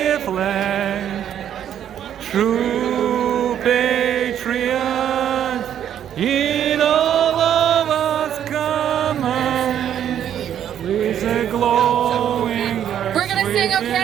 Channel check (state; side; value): quieter; left; 9.9 dB